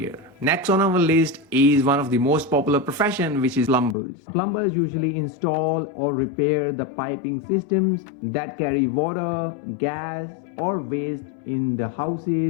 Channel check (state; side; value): drops out; right; at 4.0 s